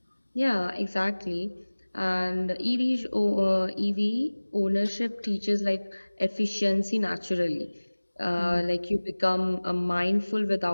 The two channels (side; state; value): both; inverted; correlation -1.00